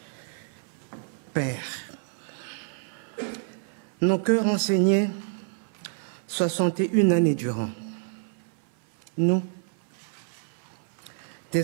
Père, nos cœurs enseignés 61 années durant, nous,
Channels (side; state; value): left; silent; 58 dB below the other